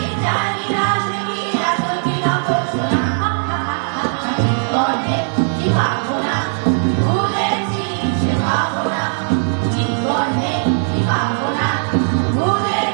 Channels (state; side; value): silent; left; digital silence